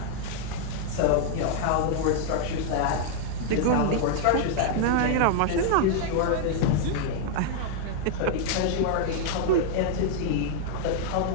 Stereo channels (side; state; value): both; different; correlation 0.00